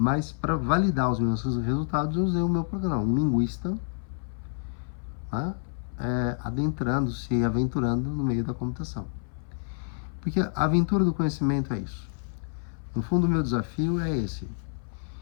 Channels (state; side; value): silent; right; 58 dB below the other